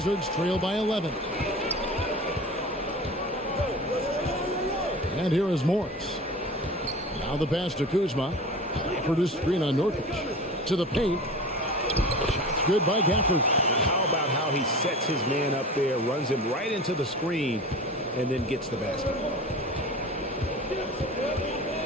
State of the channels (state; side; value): normal; both; correlation 0.35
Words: trail by 11. And here is Morris. Now the pass to Kuzma. For the screen on Nurkic. To the paint. Shot's good by Gafford. How about how he sets his man up there, runs him right into the screen, and then gets the basket.